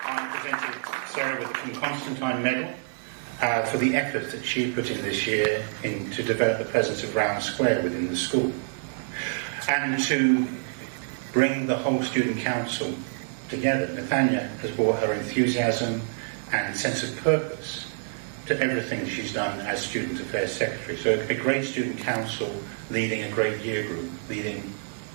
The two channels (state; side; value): silent; left; 60 dB below the other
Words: I presented Sarah with the Constantine Medal for the effort that she put in this year to develop the presence of Brown Square within the school, and to bring the whole student council together. Nathania has brought her enthusiasm and sense of purpose to everything she's done as Student Affairs Secretary. So a great student council leading a great year group, leading